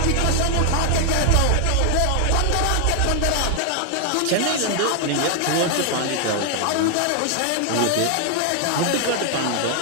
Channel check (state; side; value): different; both; correlation 0.00